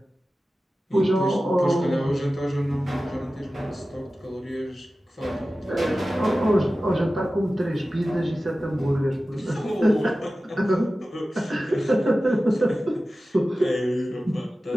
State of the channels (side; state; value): both; normal; correlation 0.95